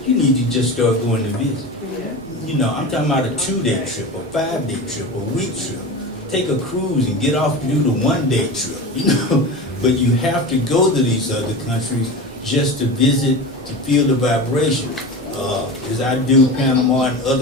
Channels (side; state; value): both; normal; correlation 0.28